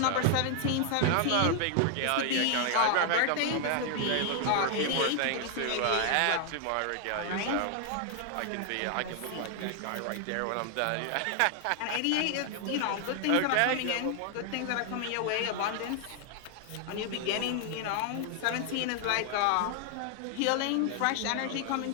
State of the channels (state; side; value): different; both; correlation 0.00